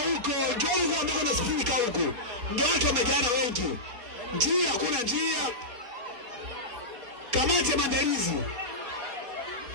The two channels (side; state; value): left; late; 4.3 ms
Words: Njoni kwa ambako nasifika huko. Ndio watu wamejana wengi. Njia kuna njia. Kamati ya maandalizi.